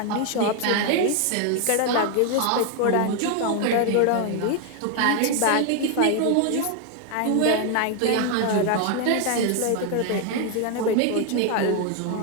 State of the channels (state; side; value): different; both; correlation 0.01